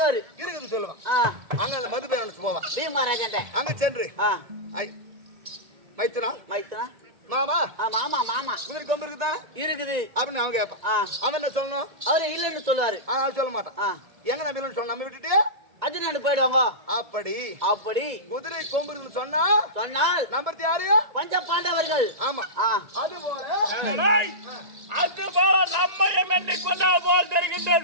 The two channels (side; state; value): left; late; 1.9 ms